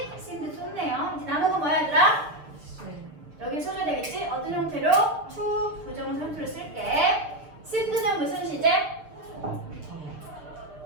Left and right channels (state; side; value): late; left; 6.8 ms